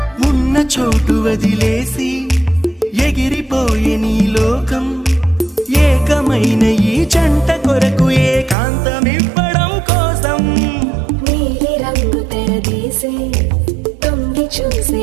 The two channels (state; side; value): drops out; left; at 8.6 s